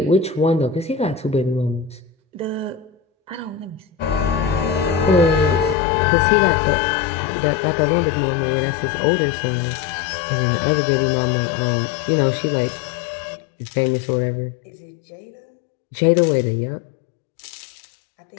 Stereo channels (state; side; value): drops out; right; at 5.8 s